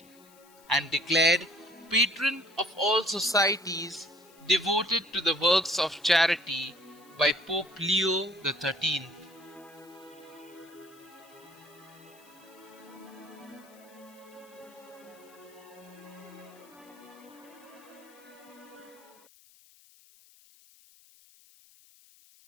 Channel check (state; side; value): noise; left; hiss, 26 dB below the sound